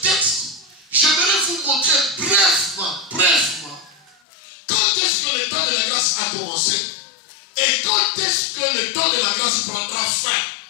texte, j'aimerais vous montrer brièvement, quand est-ce que le temps de la grâce a commencé et quand est-ce que le temps de la grâce prendra fin,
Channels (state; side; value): drops out; right; at 4.2 s